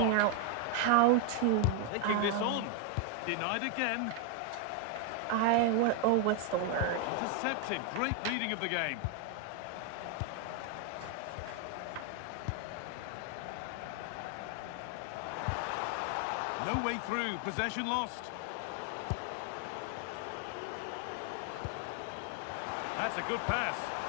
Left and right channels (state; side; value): different; both; correlation 0.01